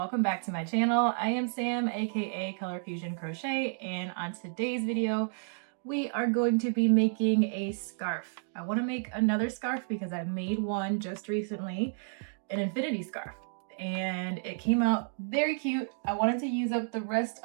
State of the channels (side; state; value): left; silent; digital silence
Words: back to my channel. I am Sam, aka Color Fusion Crochet, and on today's video we are going to be making a scarf. I want to make another scarf because I made one just recently, an infinity scarf, and it came out very cute. I wanted to use up the rest